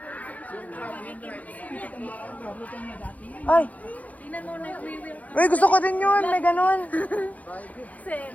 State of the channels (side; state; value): right; late; 0.073 ms